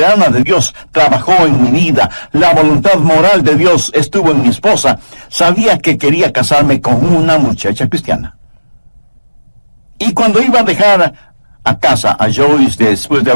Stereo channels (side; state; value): both; inverted; correlation -1.00